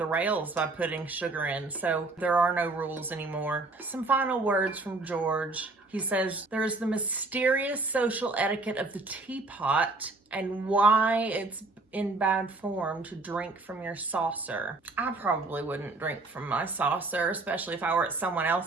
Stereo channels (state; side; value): quieter; left; 3.3 dB